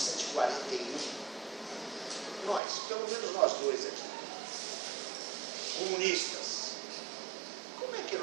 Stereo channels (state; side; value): drops out; left; at 2.6 s